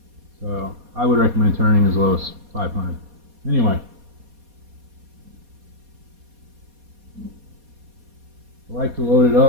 So I would recommend turning as low as 500. Anyway, I like to load it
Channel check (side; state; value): left; late; 4.2 ms